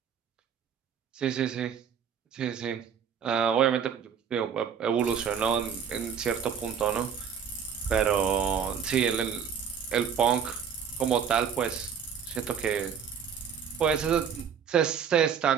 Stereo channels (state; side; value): quieter; left; 7.4 dB